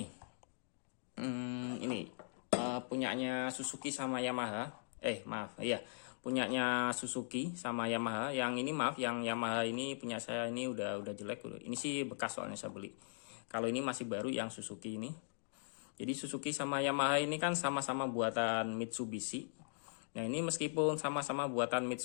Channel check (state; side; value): silent; right; digital silence